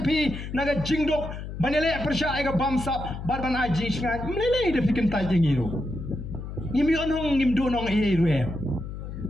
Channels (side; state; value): left; noise; hum, 8 dB below the sound